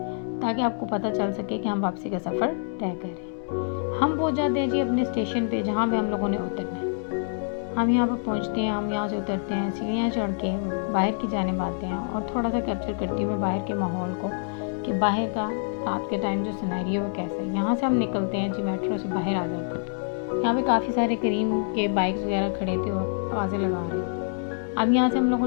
ताकि आपको पता चल सके कि हम वापसी का सफ़र तय करें। हम पहुंच जाते हैं जी अपने स्टेशन पे, जहाँ पे हम लोगों ने उतरना है। हम यहाँ पर पहुँचते हैं, हम यहाँ से उतरते हैं, सीढ़ियाँ चढ़ के बाहर की जानिब आते हैं, और थोड़ा सा कैप्चर करती हूँ मैं बाहर के माहौल को कि बाहर का रात के टाइम जो सिनेरियो है कैसा है। यहाँ से हम निकलते हैं जी, मेट्रो से बाहर आ जाते हैं। यहाँ पे काफ़ी सारे करीम के बाइक्स वगैरह खड़े थे और आवाज़ें लगा रहे थे। अब यहाँ से हम लोगों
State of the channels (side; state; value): right; silent; digital silence